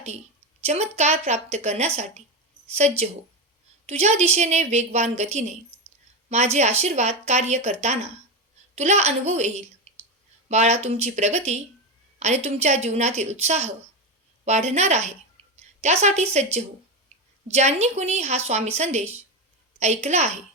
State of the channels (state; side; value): normal; both; correlation 0.15